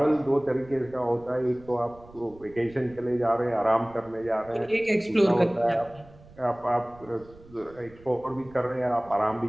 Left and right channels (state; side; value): noise; right; rumble, 23 dB below the sound